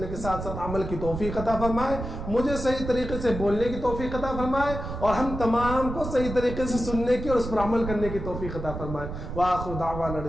کے ساتھ ساتھ عمل کی توفیق عطا فرمائے، مجھے صحیح طریقے سے بولنے کی توفیق عطا فرمائے، اور ہم تمام کو صحیح طریقے سے سننے کی اور اس پر عمل کرنے کی توفیق عطا فرمائے۔ وآخر دعوانا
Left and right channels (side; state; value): right; noise; rumble, 7 dB below the sound